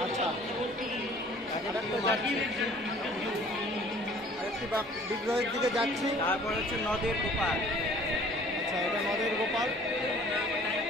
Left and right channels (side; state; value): both; normal; correlation 0.52